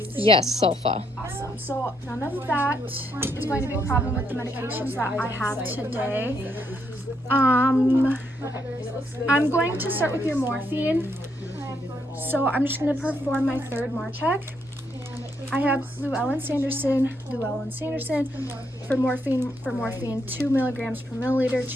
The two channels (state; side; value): normal; both; correlation 0.76